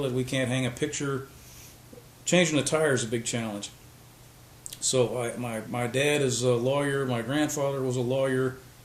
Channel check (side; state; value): both; identical; correlation 1.00